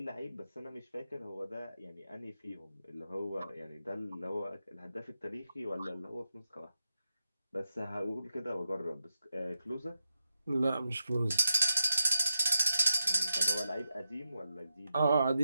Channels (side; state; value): both; inverted; correlation -0.89